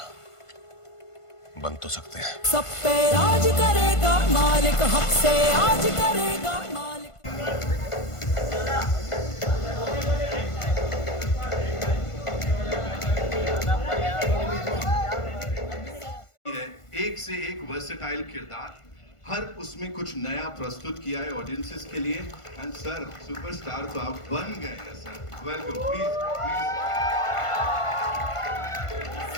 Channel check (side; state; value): right; late; 1.5 ms